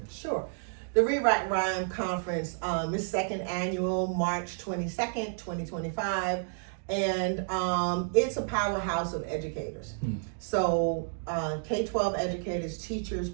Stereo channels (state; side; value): silent; left; digital silence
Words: Sure. The Read, Write, Rhyme conference is second annual, March 22nd, 2025. And it's a powerhouse of educators. So K-12 educators, teachers,